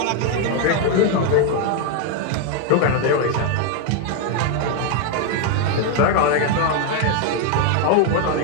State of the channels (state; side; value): different; both; correlation 0.01